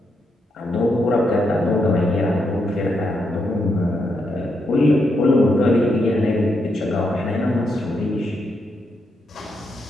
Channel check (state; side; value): normal; both; correlation 0.81